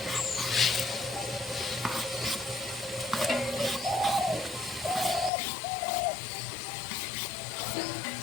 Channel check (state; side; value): drops out; right; at 5.3 s